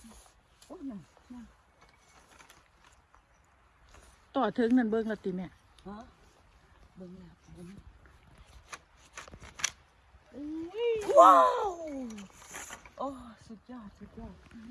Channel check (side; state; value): both; identical; correlation 1.00